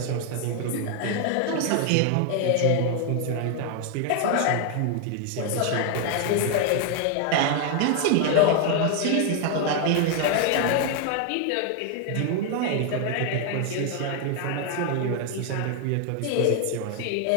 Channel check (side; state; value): both; different; correlation 0.00